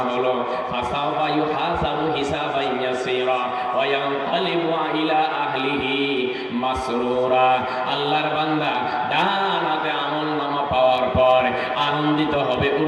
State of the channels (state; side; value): identical; both; correlation 1.00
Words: হলো, ফাসাওফা ইউহাসাবু হিসাবান ইয়াসীরা ওয়া ইয়ানকালিবু ইলা আহলিহি মাসরুরা। আল্লাহর বান্দা ডান হাতে আমলনামা পাওয়ার পর আনন্দিত হবে,